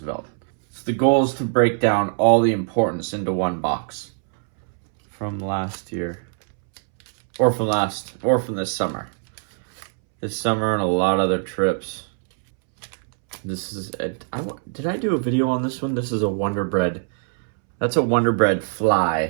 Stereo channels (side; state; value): left; silent; 64 dB below the other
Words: So the goal is to break down all the importance into one box from last year, or from this summer. This summer and a lot of other trips. This is did I do a video on this one? This is a Wonder Bread. That's a Wonder Bread